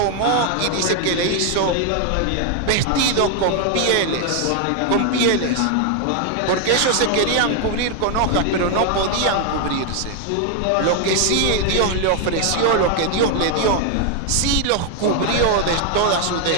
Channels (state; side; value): different; both; correlation 0.00